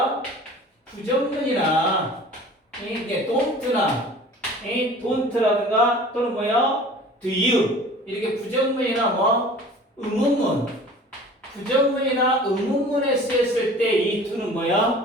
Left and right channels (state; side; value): normal; both; correlation 0.44